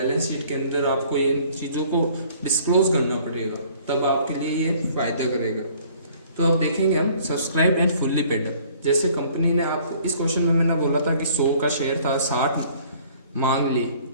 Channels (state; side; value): inverted; both; correlation -0.56